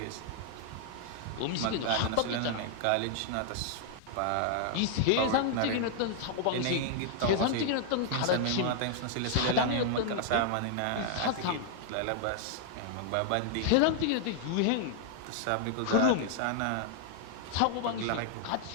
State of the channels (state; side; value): different; both; correlation 0.00